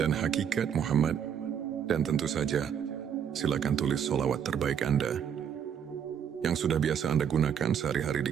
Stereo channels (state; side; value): quieter; left; 8.3 dB